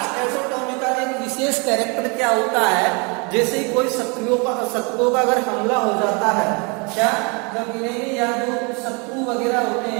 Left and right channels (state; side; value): quieter; left; 32.0 dB